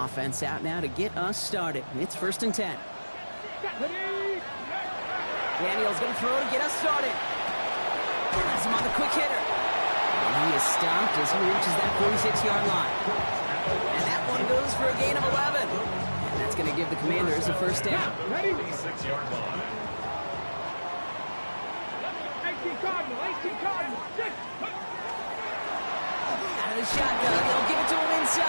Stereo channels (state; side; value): inverted; both; correlation -1.00